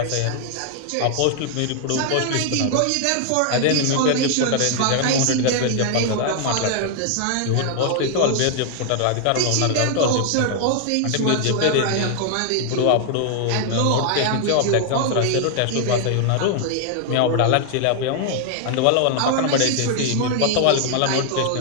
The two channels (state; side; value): different; both; correlation 0.00